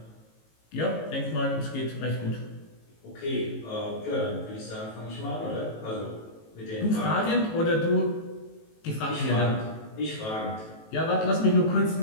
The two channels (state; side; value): late; right; 18 ms